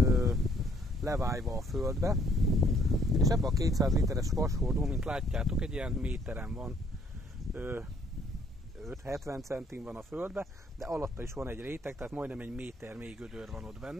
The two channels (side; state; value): both; normal; correlation 0.64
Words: levájva a földbe, és ebben a 200 literes vashordó, mint látjátok, egy ilyen méteren van, 5-70 centin van a földbe, de alatta is van egy réteg, tehát majdnem egy méter mély gödör van ott